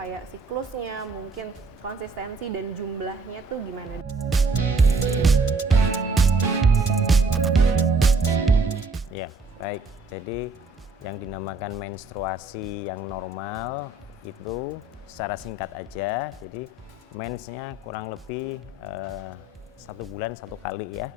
siklusnya, mungkin konsistensi dan jumlahnya tuh gimana? Ya, baik. Jadi yang dinamakan menstruasi yang normal itu secara singkat aja. Jadi mensnya kurang lebih 1 bulan 1 kali ya.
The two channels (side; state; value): left; quieter; 3.3 dB